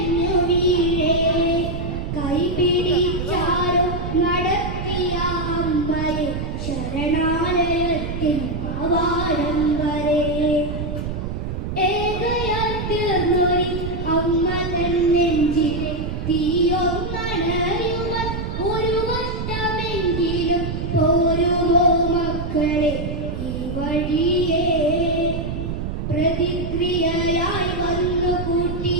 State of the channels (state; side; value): noise; right; rumble, 4 dB below the sound